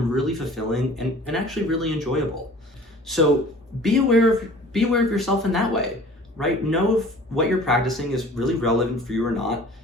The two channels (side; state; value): both; normal; correlation 0.46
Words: really fulfilling and actually really enjoyable. So be aware of yourself in that way, right? Know if what you're practicing is really relevant for you or not.